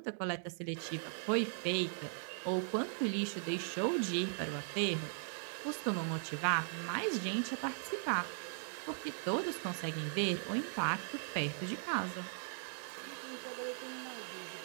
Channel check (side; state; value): left; silent; 52 dB below the other